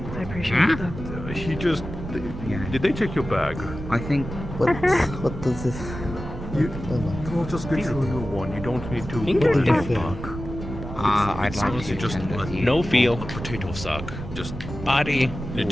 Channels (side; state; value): right; noise; rumble, 9 dB below the sound